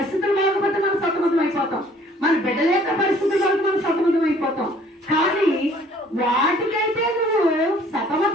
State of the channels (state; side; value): normal; both; correlation 0.57